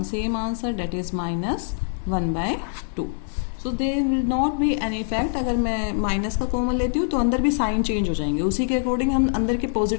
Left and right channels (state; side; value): silent; right; digital silence